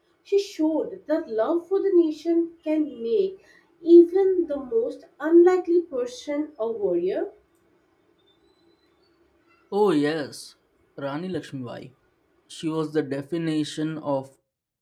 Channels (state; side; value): identical; both; correlation 1.00